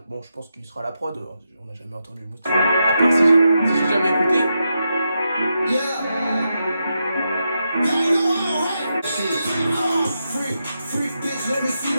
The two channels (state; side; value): inverted; both; correlation -0.85